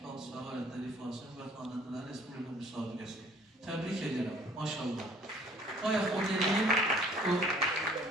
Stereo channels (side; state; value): both; normal; correlation 0.55